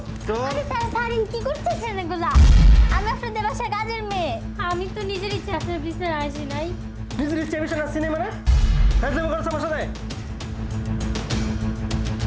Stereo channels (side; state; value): both; identical; correlation 1.00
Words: চল। আরে স্যার স্যার কি করতেছেন এগুলা? আমি আপনাদের বাসায় কাজের মেয়ে। আমি তো নিজের ইচ্ছে আপনার বিছানায় আসি নাই। নিজের ইচ্ছে বিষয় আসছি না মানে একদম করছে আমার সাথে।